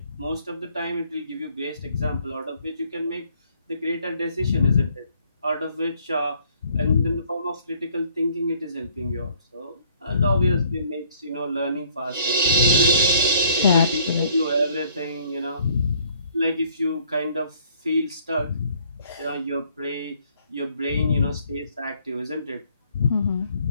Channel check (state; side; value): inverted; both; correlation -0.62